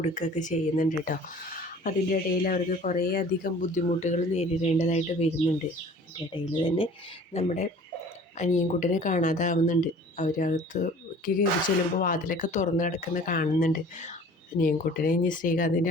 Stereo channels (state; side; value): normal; both; correlation 0.48